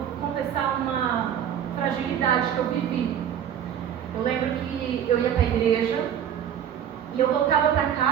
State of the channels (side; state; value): left; quieter; 9.3 dB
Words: confessar uma fragilidade que eu vivi. Eu lembro que eu ia para a igreja e eu voltava para